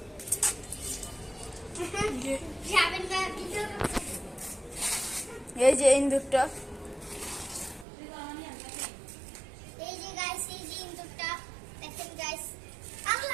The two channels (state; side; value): drops out; left; at 7.9 s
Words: এই যে ইন্দুরটা, এই যে গাইস, এই যে ইন্দুরটা দেখেন গাইস।